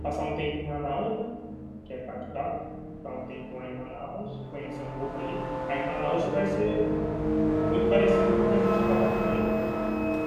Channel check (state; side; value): identical; both; correlation 1.00